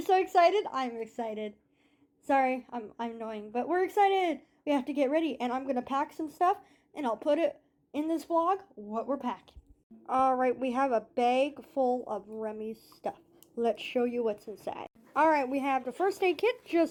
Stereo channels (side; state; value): both; identical; correlation 1.00